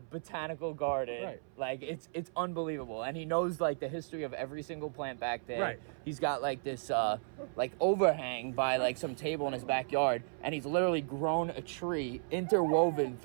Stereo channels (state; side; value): silent; left; 55 dB below the other